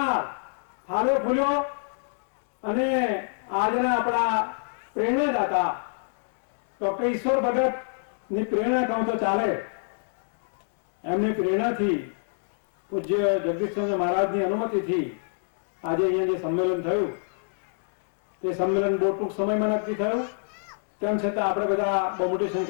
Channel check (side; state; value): right; silent; digital silence